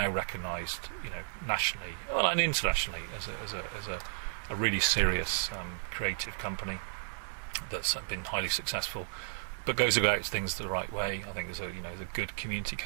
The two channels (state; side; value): silent; left; digital silence